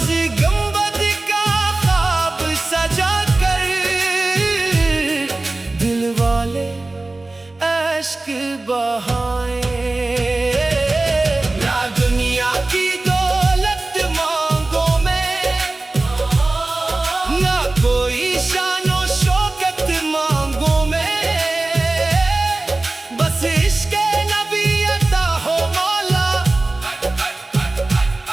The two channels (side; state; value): left; quieter; 3.1 dB